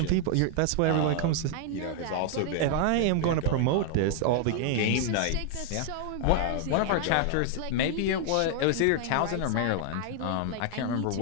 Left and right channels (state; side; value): different; both; correlation 0.00